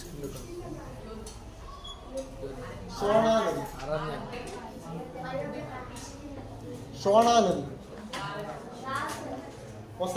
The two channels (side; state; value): both; identical; correlation 1.00